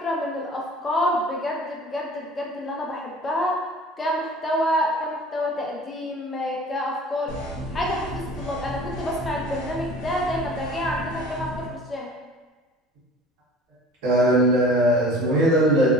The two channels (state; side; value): normal; both; correlation 0.44